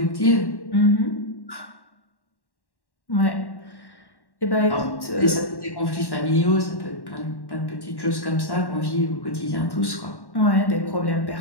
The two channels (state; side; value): late; right; 1.1 ms